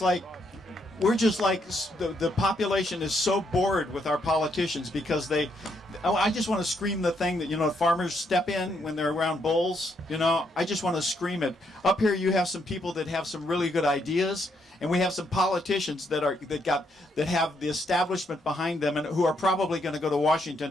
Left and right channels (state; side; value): normal; both; correlation 0.75